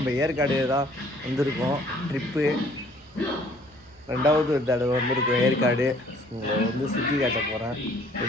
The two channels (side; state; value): both; normal; correlation 0.58